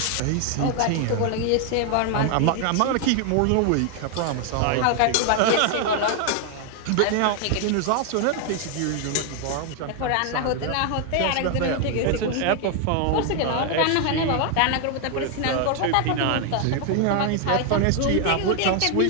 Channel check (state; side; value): different; both; correlation 0.00